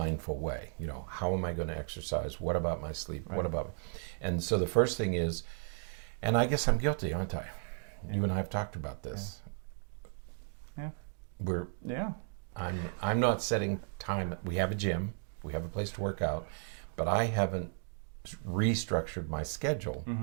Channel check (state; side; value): silent; left; 55 dB below the other